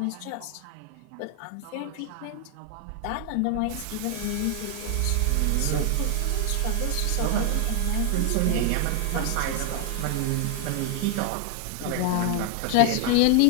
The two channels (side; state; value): both; different; correlation 0.01